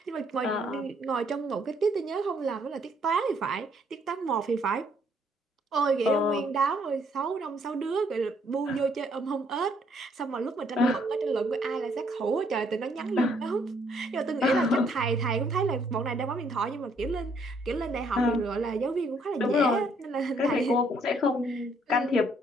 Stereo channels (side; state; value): both; normal; correlation 0.67